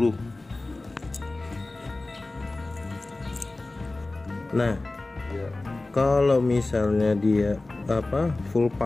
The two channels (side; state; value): right; quieter; 3.1 dB